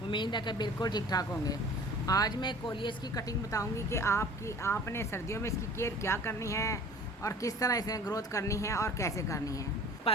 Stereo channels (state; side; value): normal; both; correlation 0.46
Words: उम्मीद है कि बिल्कुल ठीक ठाक होंगे। आज मैं कोलियस की कटिंग बताऊंगी कि आपने सर्दियों में इसकी केयर क्या करनी है और किस तरह इसे ग्रोथ करनी है और कैसे करनी है।